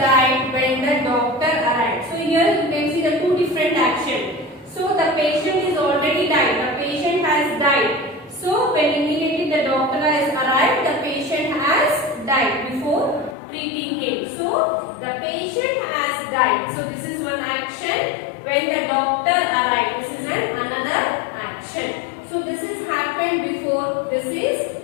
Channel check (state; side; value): drops out; right; at 13.4 s